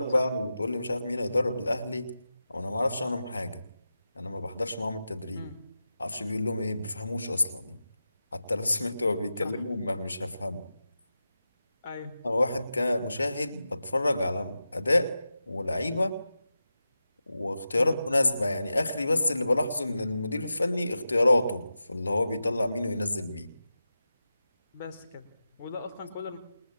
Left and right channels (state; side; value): inverted; both; correlation -0.92